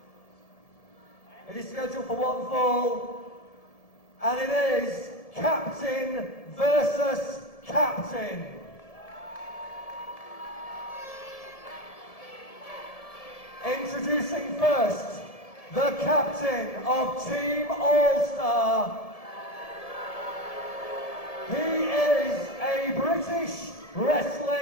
It is scheduled for one fall, and it is Captain versus Captain. Introducing first, the captain of Team All-Star. He is a British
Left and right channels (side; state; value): right; late; 1.7 ms